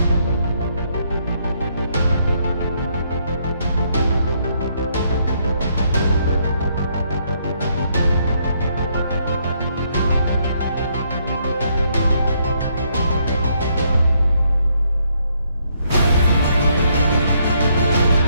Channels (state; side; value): inverted; both; correlation -0.72